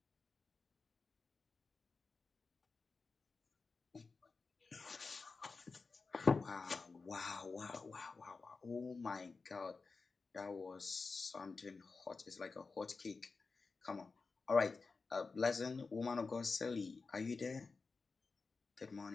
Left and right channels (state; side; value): quieter; right; 4.3 dB